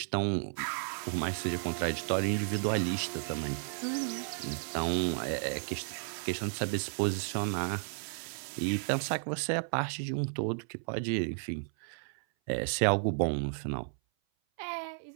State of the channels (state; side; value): silent; left; 56 dB below the other